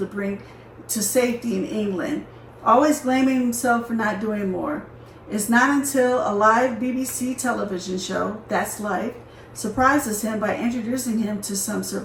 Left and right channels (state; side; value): identical; both; correlation 1.00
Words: bring to safety in England, always blaming himself for not doing more. It's not until a live BBC television show, That's Life, surprises him by introducing him to some